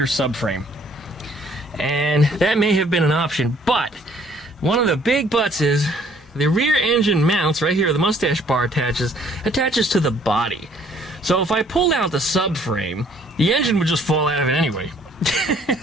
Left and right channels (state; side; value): normal; both; correlation 0.60